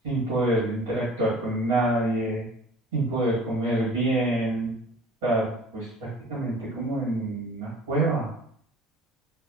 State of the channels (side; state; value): both; normal; correlation 0.47